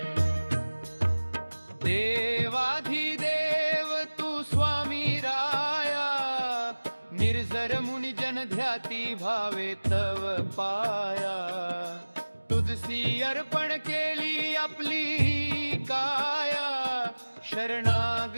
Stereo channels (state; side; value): inverted; both; correlation -1.00